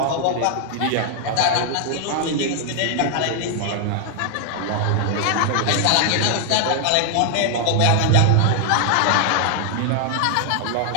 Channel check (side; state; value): both; different; correlation 0.00